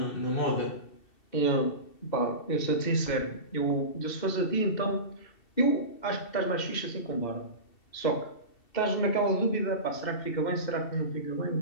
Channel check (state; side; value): late; right; 2.7 ms